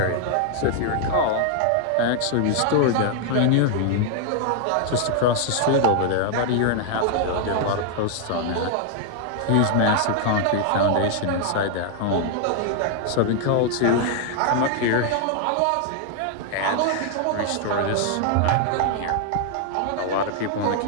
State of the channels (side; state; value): both; different; correlation 0.00